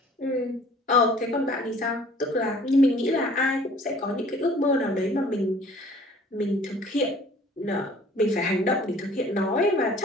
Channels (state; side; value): normal; both; correlation 0.52